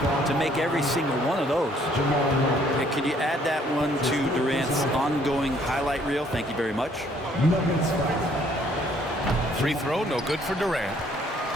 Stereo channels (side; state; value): both; normal; correlation 0.63